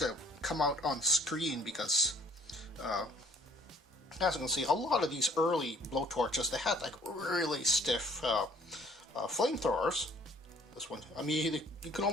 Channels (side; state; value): both; normal; correlation 0.57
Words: come out on screen because, as you can see, a lot of these early blowtorches, they had like really stiff flamethrowers. This one, I mean, you can